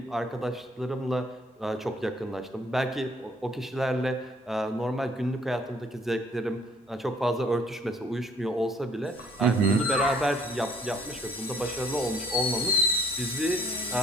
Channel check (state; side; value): normal; both; correlation 0.59